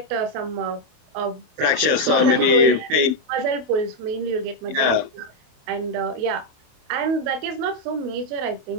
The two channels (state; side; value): late; left; 27 ms